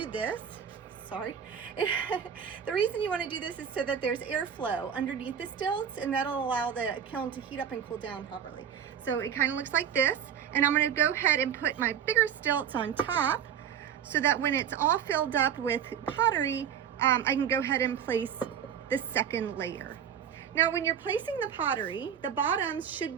this, the reason you want to do this is so that there's airflow underneath the stilts, and that'll allow the kiln to heat up and cool down properly. So it kind of looks like this, and I'm going to go ahead and put my bigger stilts on top so that when it's all filled up with pottery, I can go ahead and place the second layer. Now, when you're placing the pottery, the bottoms should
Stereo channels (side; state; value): left; quieter; 8.5 dB